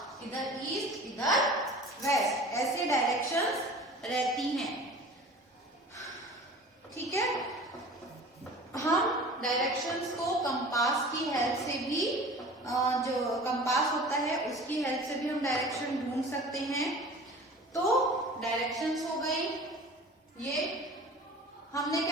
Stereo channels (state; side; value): normal; both; correlation 0.41